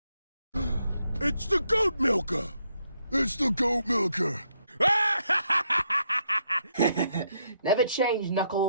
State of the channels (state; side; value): inverted; both; correlation -0.76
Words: It's the goat milker! It's the goat milker! Never change,